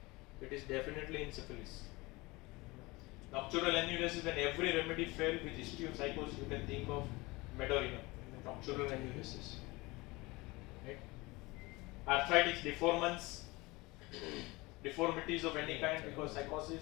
it is definitely in syphilis. Nocturnal enuresis, when every remedy failed with history of psychosis, you can think of Meadorinum, nocturnal enuresis. Right? Arthritis, deformities of any kind because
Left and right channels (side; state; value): right; quieter; 22.8 dB